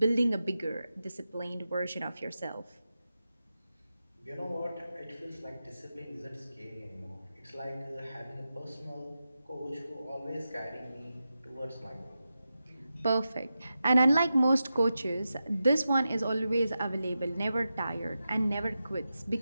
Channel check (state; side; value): inverted; both; correlation -0.91